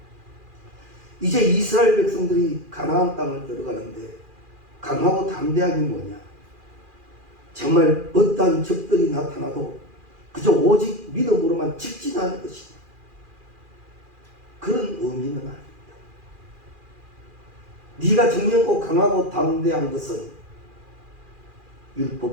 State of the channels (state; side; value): late; left; 2.4 ms